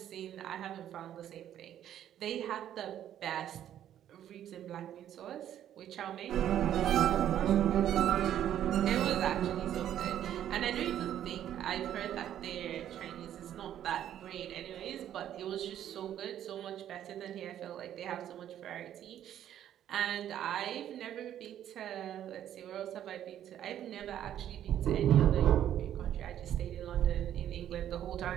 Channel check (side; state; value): left; quieter; 11.0 dB